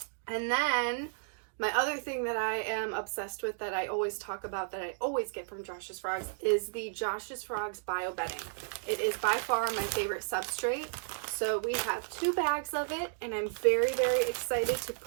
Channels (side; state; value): left; silent; digital silence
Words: And then my other thing that I am obsessed with that I always talk about, that I always get from Josh's Frogs, is the Josh's Frogs bio bedding. It is by far my favorite substrate. So we have 2 bags of it and I'm very, very excited to